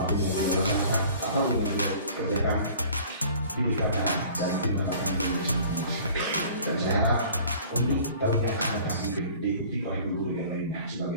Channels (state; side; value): inverted; both; correlation -0.49